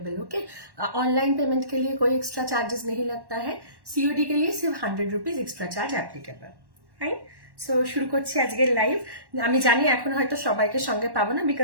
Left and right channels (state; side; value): late; left; 1.1 ms